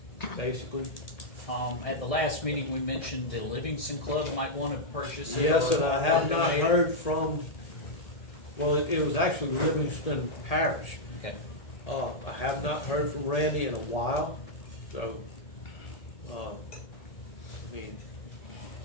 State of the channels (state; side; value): late; right; 1.8 ms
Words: basically. At the last meeting, we mentioned the Livingston Club might want to purchase it. Yes, or- and I have or not donate it. heard from, well, it was actually Livingston Parish. Okay. I have not heard from Randy in a while, so, I mean,